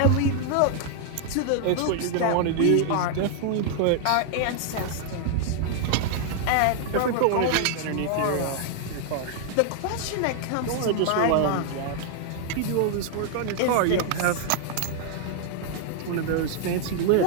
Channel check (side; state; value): both; different; correlation 0.00